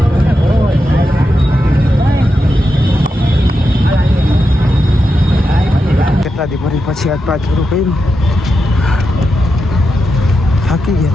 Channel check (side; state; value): both; normal; correlation 0.87